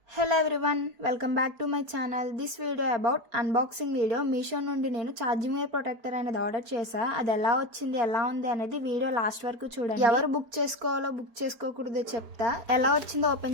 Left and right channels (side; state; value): left; late; 4.4 ms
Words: Hello everyone, welcome back to my channel. This video about unboxing video. Meesho నుండి నేను charging wire protector అనేది ఆర్డర్ చేశా. అది ఎలా వచ్చింది, ఎలా ఉంది అనేది వీడియో లాస్ట్ వరకు చూడండి. ఎవరు బుక్ చేసుకోవాలో బుక్ చేసుకోకూడదో చెప్తా. ఎలా వచ్చిందో